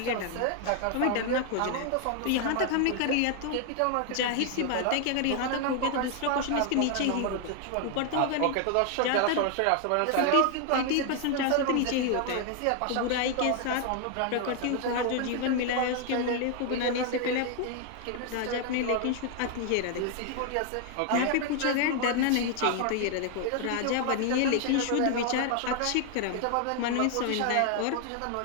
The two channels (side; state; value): both; different; correlation 0.00